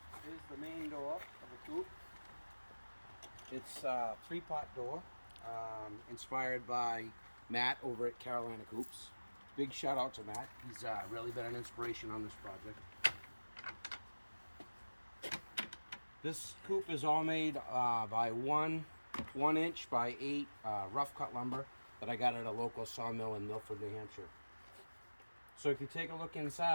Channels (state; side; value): inverted; both; correlation -1.00